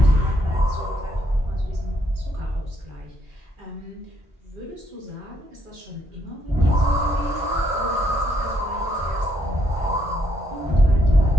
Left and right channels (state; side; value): normal; both; correlation 0.73